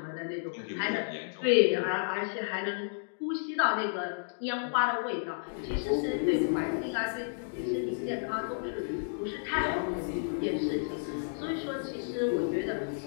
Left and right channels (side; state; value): right; silent; digital silence